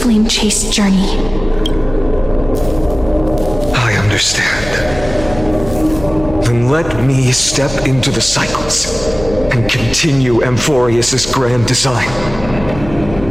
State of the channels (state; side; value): noise; left; hum, 13 dB below the sound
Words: flame-chased journey. I understand. Then let me step into the cycles and continue Amphoreus' grand design.